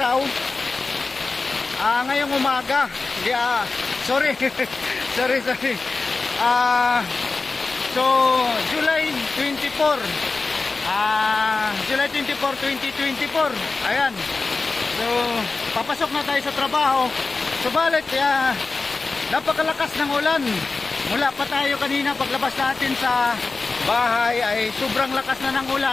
Ngayong umaga. Sorry. sorry. So, July 24, July 24, 2024. Ayan. So, papasok na tayo sa trabaho. Subalit, napakalakas ng ulan. Mula pa tayo kanina paglabas natin sa bahay ay sobrang lakas na ng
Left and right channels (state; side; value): quieter; right; 3.9 dB